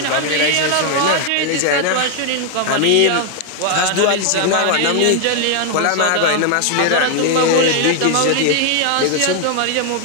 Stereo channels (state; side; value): different; both; correlation 0.00